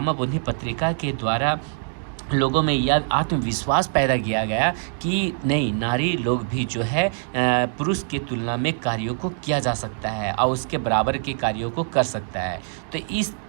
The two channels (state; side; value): silent; left; digital silence